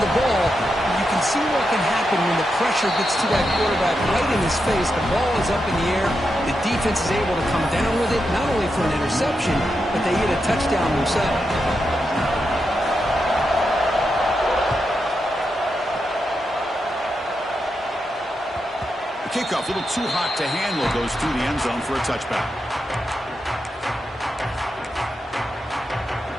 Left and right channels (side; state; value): both; normal; correlation 0.86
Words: the ball. You can see what can happen when the pressure gets to that quarterback right in his face. The ball is up in the air. The defense is able to come down with it, not only for an interception, but they get a touchdown themselves. Kickoff, a little too hot to handle, goes through the end zone for a touchback.